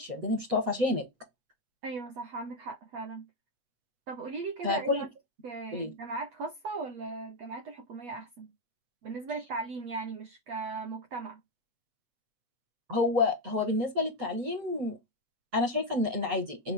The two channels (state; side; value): late; left; 8.2 ms